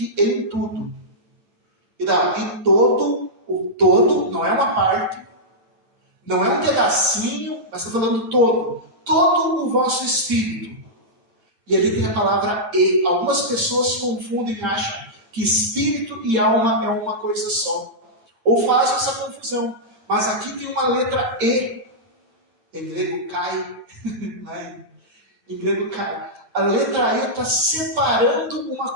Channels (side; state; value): left; late; 8.9 ms